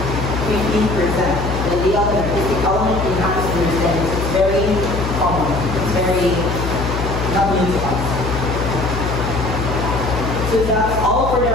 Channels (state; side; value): noise; left; hum, 4 dB below the sound